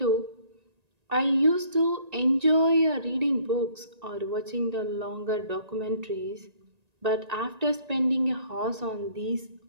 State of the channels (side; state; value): left; late; 1.9 ms